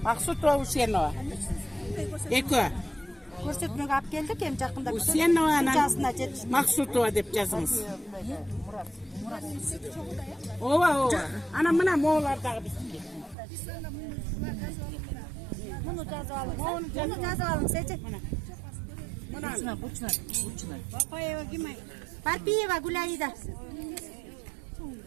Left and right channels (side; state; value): left; drops out; at 13.4 s